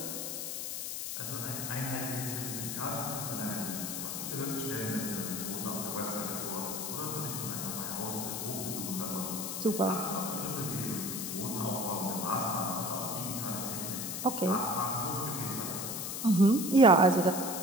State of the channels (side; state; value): left; noise; hiss, 4 dB below the sound